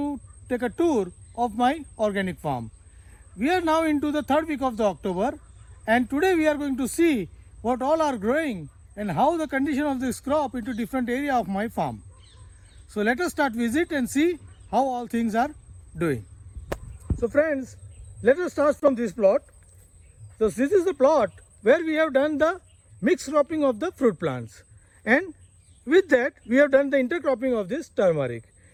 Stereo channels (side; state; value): both; identical; correlation 1.00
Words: take a tour of my organic farm. We are now into the third week of the October and today we are going to see what all are growing and how the condition of this crop into different area of my farm. So let us start visit and see how all things are doing. So friends, let us start from this plot. So this is the plot where we have done the mixed cropping of the fruit plants, and with that we have done the intercropping of this turmeric.